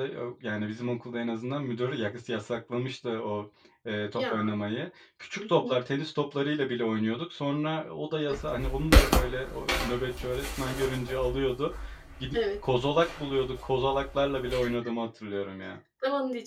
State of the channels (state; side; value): identical; both; correlation 1.00